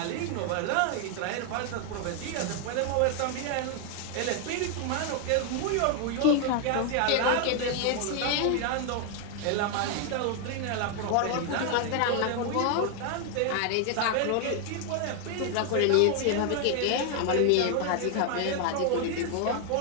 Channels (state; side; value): different; both; correlation 0.00